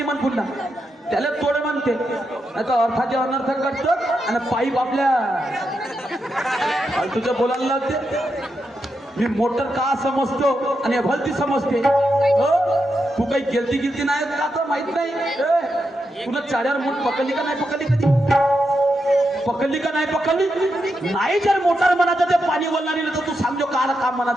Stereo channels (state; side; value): normal; both; correlation 0.85